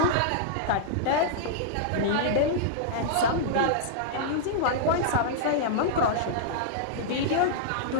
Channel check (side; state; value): both; different; correlation -0.02